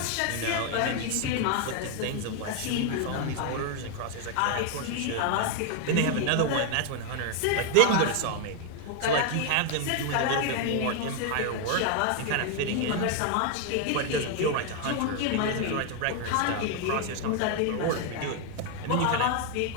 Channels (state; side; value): different; both; correlation 0.01